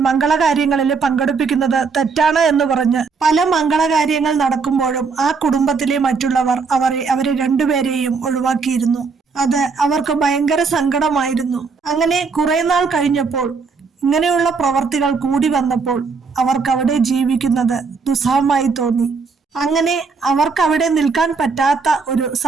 മംഗളകാര്യങ്ങളിൽ പങ്കെടുപ്പിക്കുന്നത് തെറ്റാണ് എന്ന് പറഞ്ഞ് പല മംഗളകാര്യങ്ങൾ നടക്കുമ്പോഴും ആ കുടുംബത്തിലെ മറ്റുള്ളവർ അവരെ രണ്ടുപേരെയും ഒഴിവാക്കിയിരുന്നു. അത് അവർക്ക് ഭയങ്കര സങ്കടമായിരുന്നു. അങ്ങനെ കുറെ നാൾ കഴിഞ്ഞപ്പോൾ, ഇങ്ങനെയുള്ള പ്രവർത്തികൾ കൂടി വന്നപ്പോൾ അവർക്ക് അവിടെ ജീവിക്കുന്നത് ദുസ്സഹമായി തോന്നി. അങ്ങനെ അവർക്ക് അവിടെ നിൽക്കാൻ പറ്റാത്ത ഒരു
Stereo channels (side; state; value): left; quieter; 4.9 dB